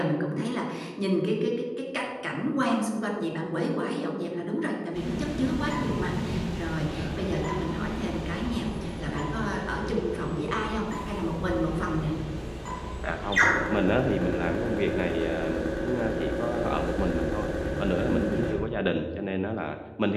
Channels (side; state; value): both; identical; correlation 1.00